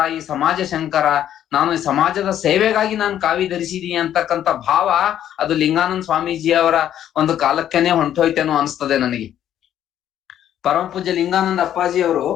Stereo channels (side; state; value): right; quieter; 10.9 dB